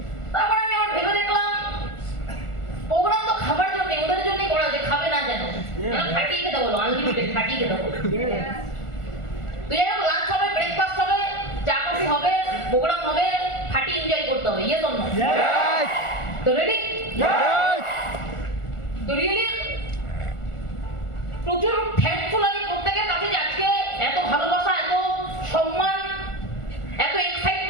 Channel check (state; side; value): late; right; 1.4 ms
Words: তারপর আমি আবার ভেবে দেখলাম প্রোগ্রাম তো খাবার জন্য, ওদের জন্যই করা, যে খাবে না যেন ফাটিয়ে খেতে বলো, আনলিমিটেড ফাটিয়ে খেতে বলো। তো যাই হোক, লাঞ্চ হবে, ব্রেকফাস্ট হবে, চা কফি হবে, প্রোগ্রাম হবে, ফাটি এনজয় করতে হবে। Yes or no? তো রেডি? তো রিয়েলি প্রচুর থ্যাঙ্কফুল আমি প্রত্যেকের কাছে যে আজকে এত ভালোবাসা, এত সম্মান, এত